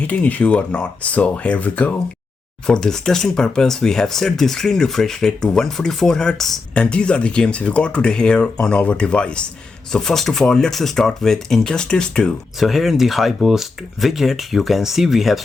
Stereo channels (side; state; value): right; quieter; 4.1 dB